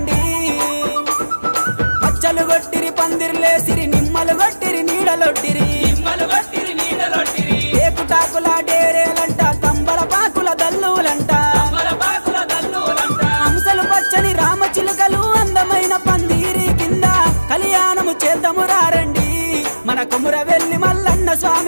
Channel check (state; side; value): inverted; both; correlation -1.00